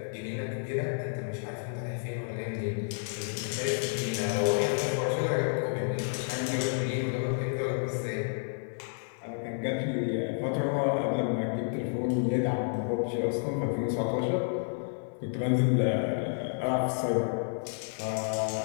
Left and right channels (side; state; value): right; silent; 57 dB below the other